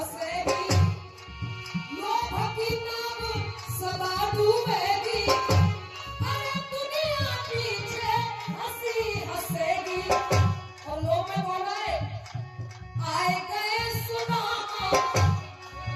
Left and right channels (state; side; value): identical; both; correlation 1.00